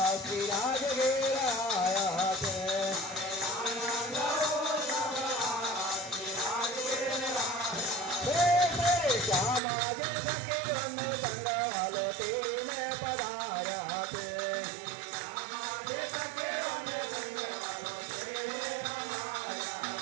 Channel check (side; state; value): left; drops out; at 9.6 s